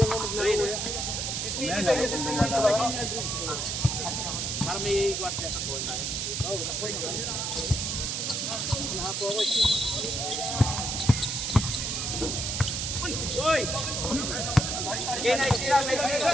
Para may guardia ako. Nahapo ako. Uy! Okay, nice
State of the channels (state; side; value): noise; right; hiss, 1 dB below the sound